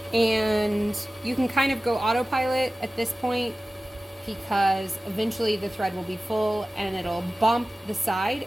And you can kind of go autopilot at this point because eventually the thread will be full and it'll bump the side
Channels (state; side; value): normal; both; correlation 0.96